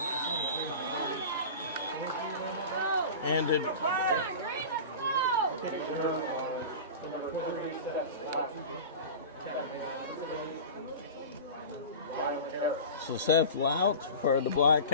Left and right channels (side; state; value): both; inverted; correlation -0.33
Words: And so Seth Lout for the Black